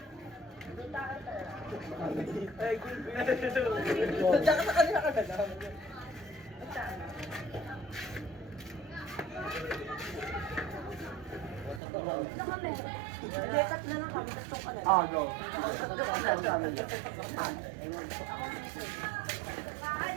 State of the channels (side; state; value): left; drops out; at 11.8 s